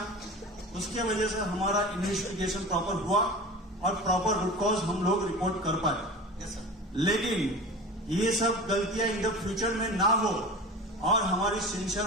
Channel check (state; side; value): normal; both; correlation 0.33